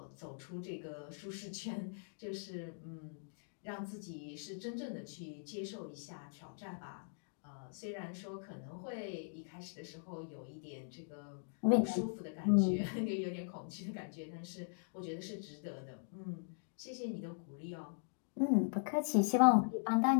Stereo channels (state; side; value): silent; right; digital silence